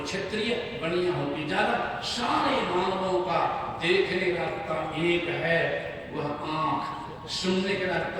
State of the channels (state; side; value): identical; both; correlation 1.00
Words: क्षत्रिय, बनिया हो कि जादव, सारे मानवों का देखने का रास्ता एक है, वह आंख। सुनने का